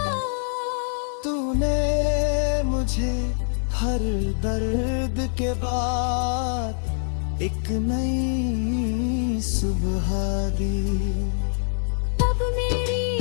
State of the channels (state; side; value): silent; right; 62 dB below the other